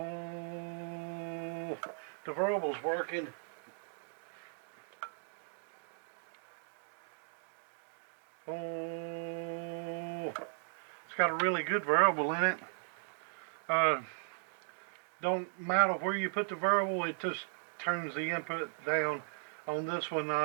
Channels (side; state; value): left; silent; digital silence